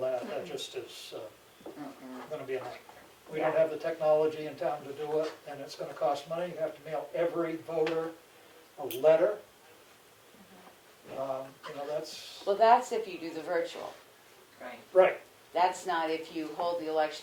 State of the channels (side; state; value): both; identical; correlation 1.00